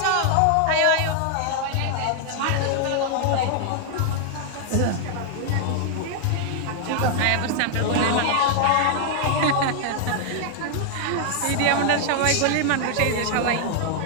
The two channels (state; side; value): different; both; correlation 0.00